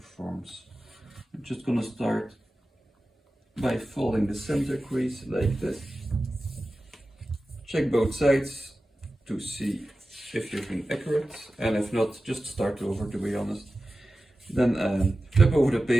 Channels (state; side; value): normal; both; correlation 0.94